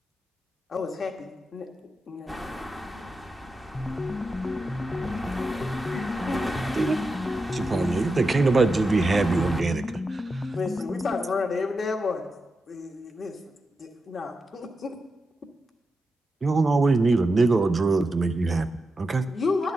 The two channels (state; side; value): normal; both; correlation 0.89